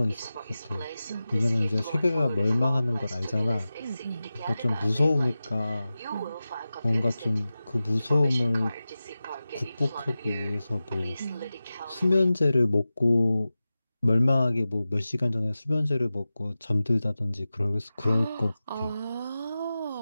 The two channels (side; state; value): both; inverted; correlation -0.95